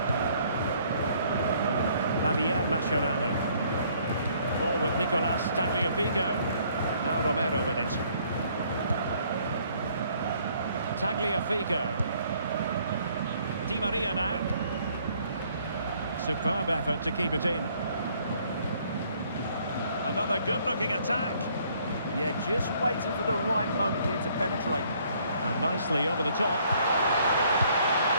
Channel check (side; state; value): both; inverted; correlation -0.63